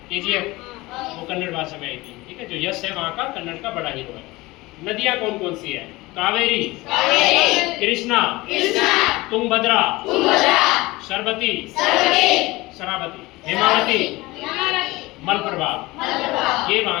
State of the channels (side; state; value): right; quieter; 20.9 dB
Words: केजीएफ, वो कन्नड़ भाषा में आई थी, ठीक है। जो यश है वहाँ का कन्नड़ का बड़ा हीरो है। नदियाँ कौन कौन सी है? कावेरी, कृष्णा, तुंगभद्रा, शरावती, हेमावती, मलप्रभा, ये